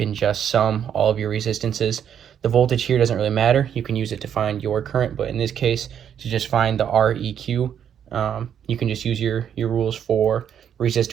just sum all of your resistances. The voltage here doesn't really matter. You can use it to find your current, but in this case, to just find the REQ, you can just use your rules for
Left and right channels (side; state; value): left; quieter; 8.9 dB